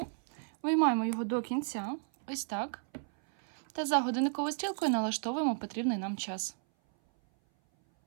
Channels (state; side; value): silent; left; 56 dB below the other